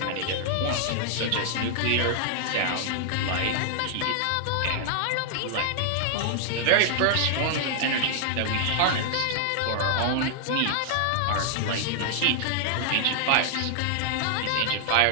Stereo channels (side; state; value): both; different; correlation 0.00